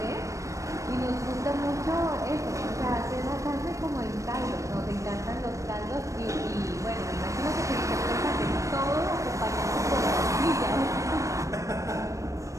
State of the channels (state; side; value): late; left; 0.15 ms